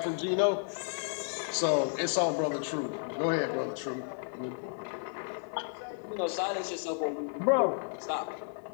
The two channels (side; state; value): right; silent; 56 dB below the other